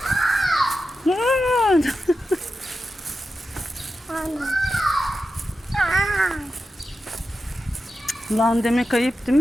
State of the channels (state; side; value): normal; both; correlation 0.90